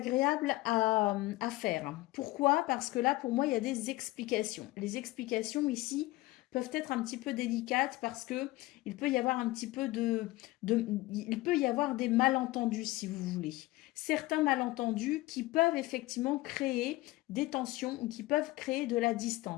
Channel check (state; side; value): quieter; right; 19.0 dB